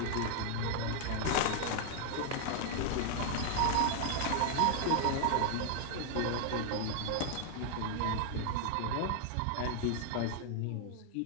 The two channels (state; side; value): different; both; correlation 0.00